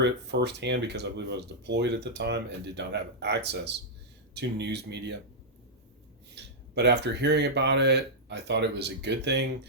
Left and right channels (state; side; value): normal; both; correlation -0.08